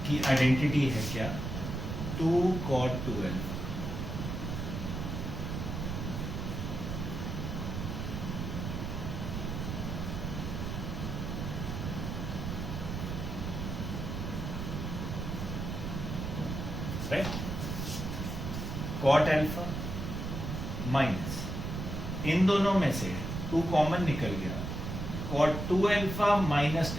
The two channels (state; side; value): noise; right; rumble, 4 dB below the sound